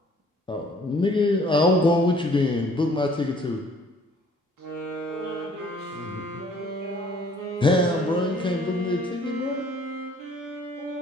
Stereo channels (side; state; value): both; normal; correlation 0.57